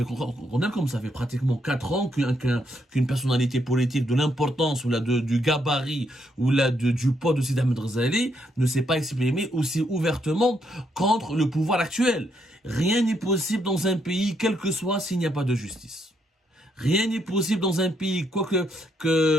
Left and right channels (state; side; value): normal; both; correlation 0.76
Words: qu'on est comme ça fait pratiquement 4 ans qu'une personnalité politique de l'importance ou du gabarit ou du poids de Sidi Ahmed Ghazali ne s'est pas exprimé aussi ouvertement contre le pouvoir actuel. Rien n'est possible dans un pays, quel que soit, s'il n'y a pas de justice. Rien n'est possible dans un pays,